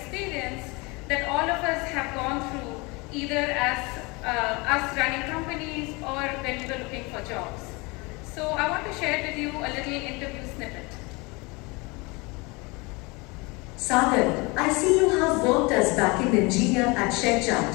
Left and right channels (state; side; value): quieter; right; 26.6 dB